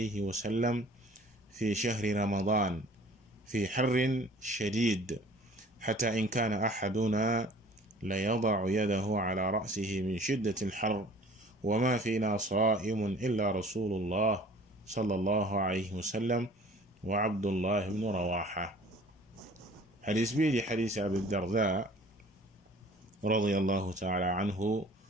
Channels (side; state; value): both; normal; correlation 0.49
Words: وسلم في شهر رمضان في حر شديد حتى إن كان أحدنا ليضع يده على رأسه من شدة الحر وما فينا صائم إلا رسول الله sallallahu alayhi wa sallam wa Abdullah ibn Rawaha. xadis bii di xadis Abu Darda radiyallahu taala anhu